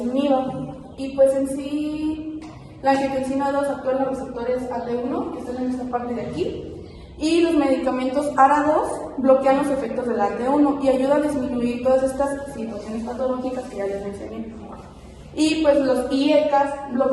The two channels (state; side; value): identical; both; correlation 1.00